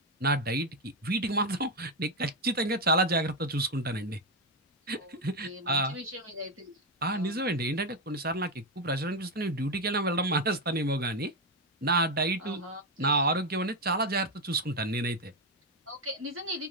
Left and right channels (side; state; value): both; normal; correlation 0.08